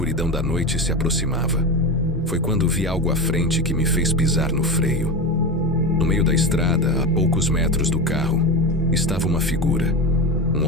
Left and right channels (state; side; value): normal; both; correlation 0.22